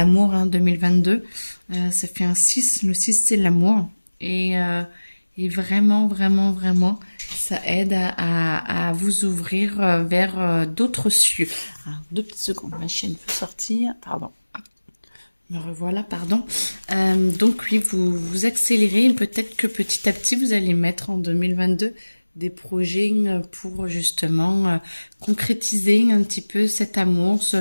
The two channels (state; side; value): inverted; both; correlation -1.00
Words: hein, 2022. Ça fait un 6. Le 6, c'est l'amour. Et vraiment, vraiment, vraiment, ça aide à vous ouvrir vers d'autres cieux. Alors, 2 petites secondes, ma chienne peut sortir. Pardon. Me revoilà, pardon. Donc oui, vous accélérez. Peut-être que petit à petit, vous allez mettre en 2022 des projets pour justement concrétiser un petit peu cet amour.